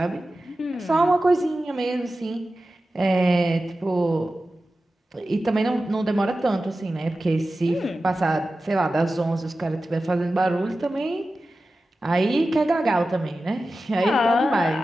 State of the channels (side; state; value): both; normal; correlation 0.94